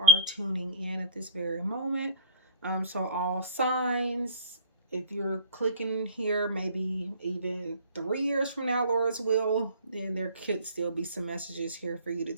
tuning in at this very moment. So all signs, if you're clicking here, maybe even 3 years from now, Lord's will, then there could still be some messages here for you to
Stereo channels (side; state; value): both; inverted; correlation -0.41